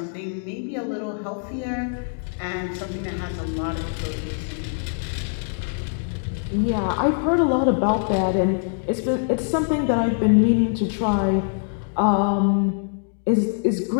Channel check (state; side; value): silent; right; digital silence